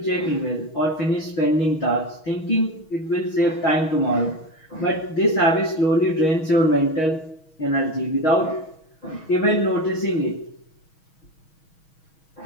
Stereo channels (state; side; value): late; right; 6.3 ms